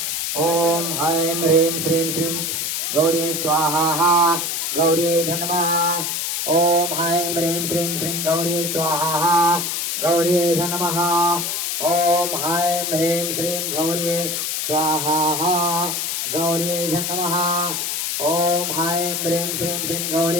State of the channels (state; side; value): noise; left; hiss, 1 dB below the sound